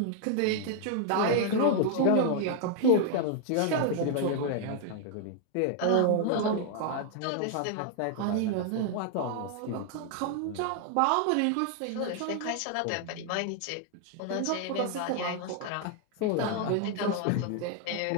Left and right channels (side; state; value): both; different; correlation 0.00